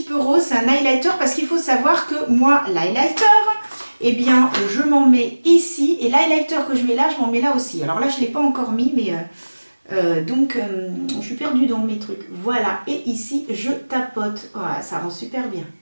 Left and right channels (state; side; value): inverted; both; correlation -1.00